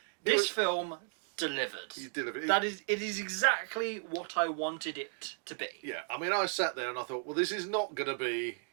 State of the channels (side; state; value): left; silent; 55 dB below the other